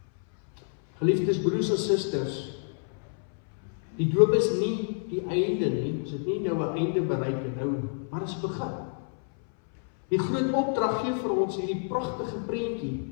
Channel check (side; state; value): right; silent; 59 dB below the other